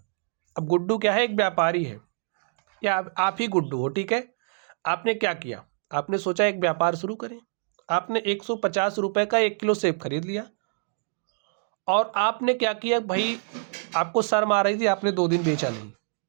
अब गुड्डू क्या है, एक व्यापारी है या आप ही गुड्डू हो, ठीक है। आपने क्या किया, आपने सोचा एक व्यापार शुरू करें। आपने 150 रुपये का 1 किलो सेब खरीद लिया और आपने क्या किया भाई, आपको शर्म आ रही थी, आपने 2 दिन बेचा नहीं।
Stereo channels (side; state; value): left; silent; digital silence